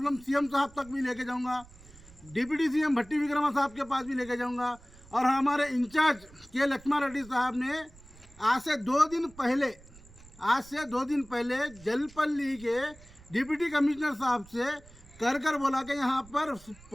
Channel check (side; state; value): right; noise; rumble, 22 dB below the sound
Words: सीएम साहब तक भी लेके जाऊँगा, डिप्टी सीएम भट्टी विक्रमा साहब के पास भी लेके जाऊँगा। और हमारे इंचार्ज के लक्ष्मण रेड्डी साहब ने आज से 2 दिन पहले जलपल्ली के डिप्टी कमिश्नर साहब से कर बोला कि यहाँ पर